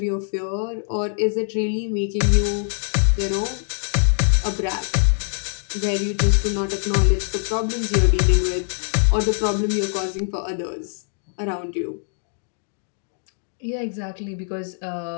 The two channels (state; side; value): silent; right; digital silence